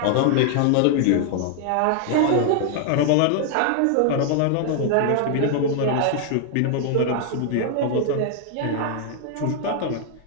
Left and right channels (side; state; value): both; different; correlation 0.00